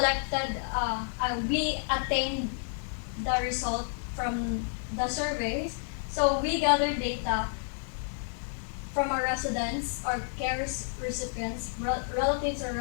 we attained the result from the surveys. So we gathered data from our residents, our care recipients, relatives or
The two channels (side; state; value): right; silent; 57 dB below the other